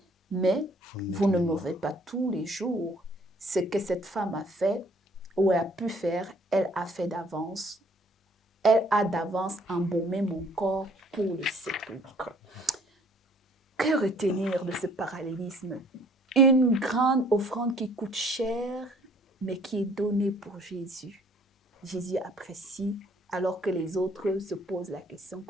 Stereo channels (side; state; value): both; normal; correlation 0.59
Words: mais vous ne m'aurez pas tous les jours. Ce que cette femme a fait, ou a pu faire, elle a fait d'avance. Elle a d'avance embaumé mon corps pour le sépulcre. » Que retenir de ce parallélisme? Une grande offrande qui coûte cher, mais qui est donnée pour Jésus. Jésus apprécie, alors que les autres se posent la question